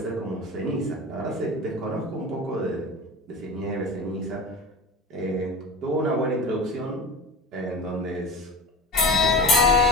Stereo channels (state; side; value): normal; both; correlation 0.31